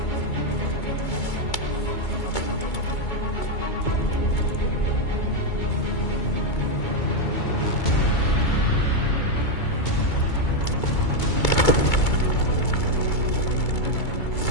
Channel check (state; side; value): late; right; 2.3 ms